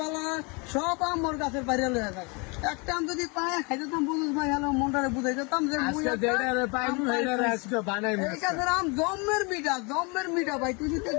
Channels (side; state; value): right; quieter; 30.6 dB